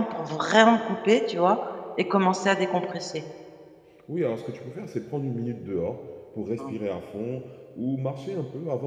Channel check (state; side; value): identical; both; correlation 1.00